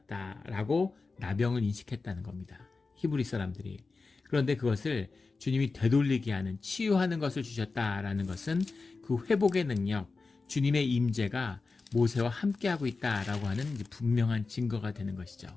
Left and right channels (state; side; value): quieter; right; 4.0 dB